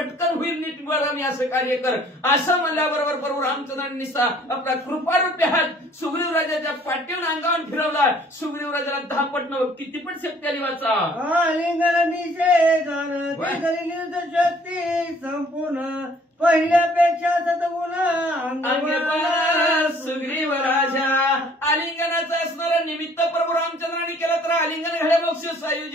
होईल नीट बघा मी असं कार्य कर. असं म्हणल्याबरोबर प्रभू रामचंद्रांनी निसा आपला कृपारूपी हात सुग्रीवराजाच्या पाठीवर अंगावर फिरवला. सुग्रीवराजाला 10 पट किती पण शक्ती आली वाचा. आलिंगन निषेधन निर्द शक्ती संपूर्ण, पहिल्यापेक्षा सद्गुण सुग्रीवराजा. आलिंगनाचं असणारं निमित्त प्रभू रामचंद्रांनी केलं तर आलिंगन घड्या मोक्ष सायुज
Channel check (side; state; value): both; normal; correlation 0.57